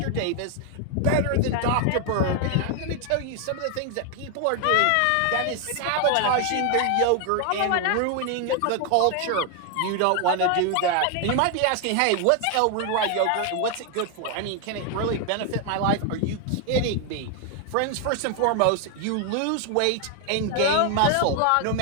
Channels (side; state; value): both; different; correlation 0.00